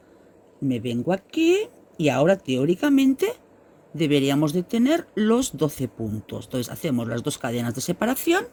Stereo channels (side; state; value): both; identical; correlation 1.00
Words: me vengo aquí y ahora teóricamente deberíamos de tener los 12 puntos. Entonces hacemos las 2 cadenas de separación